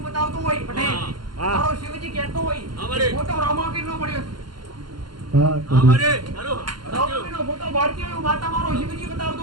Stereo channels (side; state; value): left; late; 0.71 ms